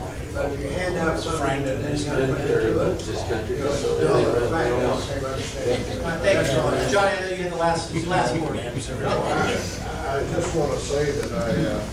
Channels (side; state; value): both; identical; correlation 1.00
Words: But if you hand out something that then you gotta put into it, Thank you, John. Johnny, I know you had the last word. I just want to say that